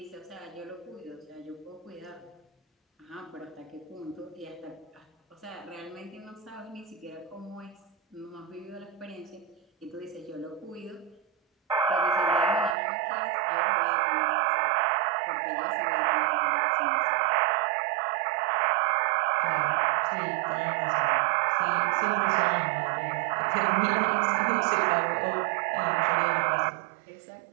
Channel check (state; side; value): drops out; left; at 12.8 s